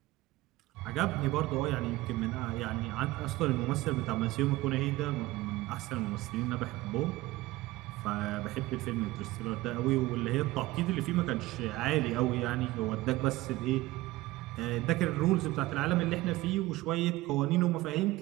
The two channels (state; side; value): quieter; left; 18.6 dB